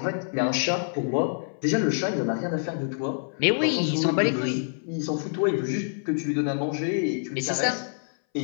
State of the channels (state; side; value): silent; right; 61 dB below the other